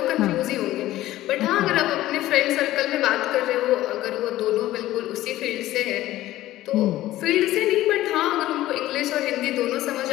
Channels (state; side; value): quieter; right; 15.2 dB